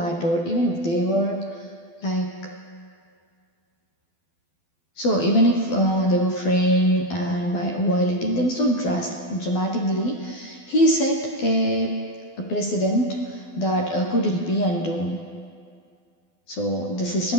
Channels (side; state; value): right; late; 12 ms